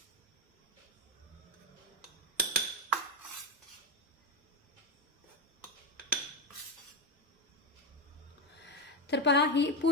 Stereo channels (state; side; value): normal; both; correlation 0.11